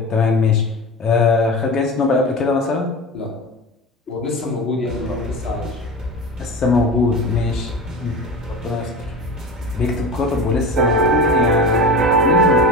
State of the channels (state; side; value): normal; both; correlation 0.30